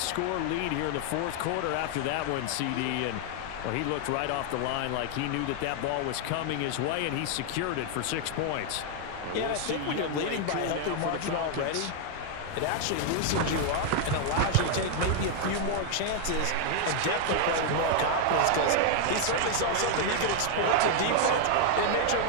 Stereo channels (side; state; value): both; different; correlation 0.00